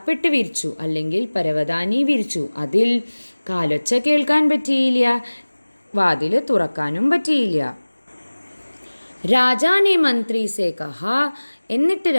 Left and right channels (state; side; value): inverted; both; correlation -1.00